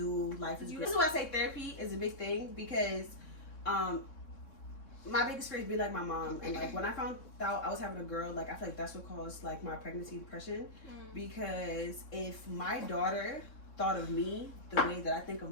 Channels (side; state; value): right; late; 3.6 ms